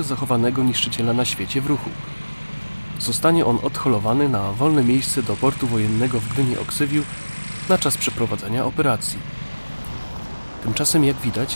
zachowanego niszczyciela na świecie w ruchu. Zostanie on odholowany na wolne miejsce do portu wojennego w Gdyni-Oksywiu na czas przeprowadzenia operacji. Tymczasem, jak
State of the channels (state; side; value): inverted; both; correlation -1.00